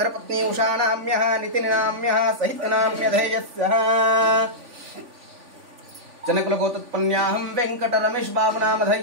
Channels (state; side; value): late; left; 3.5 ms